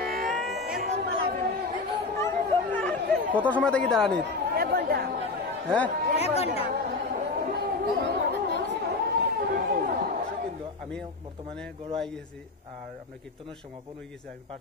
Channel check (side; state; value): right; quieter; 3.7 dB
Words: কত সময় থেকে দাঁড়ানি? হ্যাঁ, আমি বর্তমানে গড় আই গেছি আর আপনার কীর্তনের সমাপন হয়ে গেছে, আমি